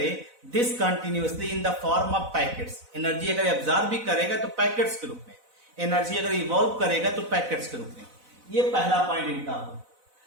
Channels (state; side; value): late; left; 4.0 ms